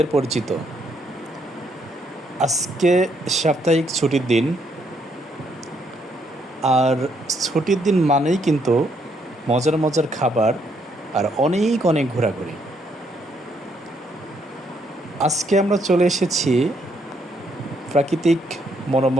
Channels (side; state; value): both; normal; correlation 0.72